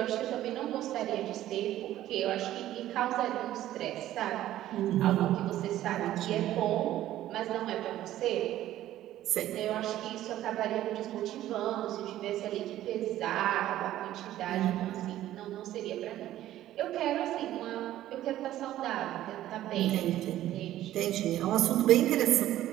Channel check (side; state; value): left; quieter; 13.5 dB